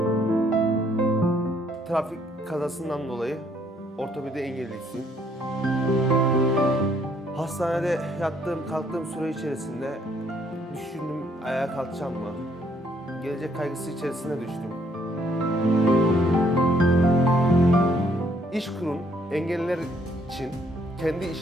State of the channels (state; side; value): normal; both; correlation 0.67